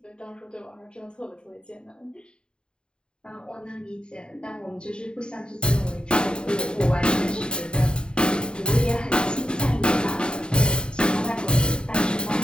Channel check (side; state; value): right; late; 0.049 ms